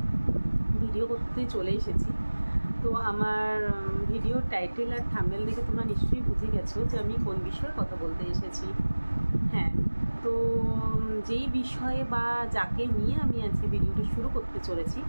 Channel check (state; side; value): inverted; both; correlation -1.00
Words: ভিডিও করতে চলে এসেছি। তো আমার ভিডিওর টাইটেল আর থাম্বনেল দেখে তোমরা নিশ্চয়ই বুঝে গেছো যে আমি কোন বিষয়ে কথা বলতে এসেছি। হ্যাঁ, তো যেই বিষয়ে বা যাকে নিয়ে আমি আজকে ভিডিওটা শুরু করতে চলেছি,